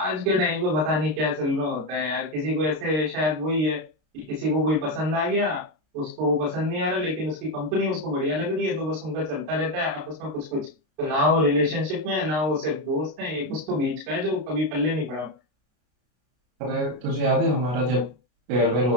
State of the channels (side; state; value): left; late; 33 ms